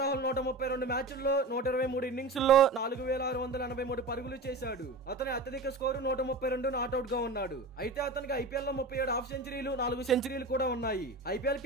రాహుల్ 132 మ్యాచ్ల్లో 123 ఇన్నింగ్స్ లో 4683 పరుగులు చేశాడు. అతని అత్యధిక స్కోరు 132 నాట్అవుట్ గా ఉన్నాడు. అయితే అతనికి ఐపీఎల్ లో 37 హాఫ్ సెంచరీలు, 4 సెంచరీలు కూడా ఉన్నాయి. ఐపీఎల్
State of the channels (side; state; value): left; quieter; 3.2 dB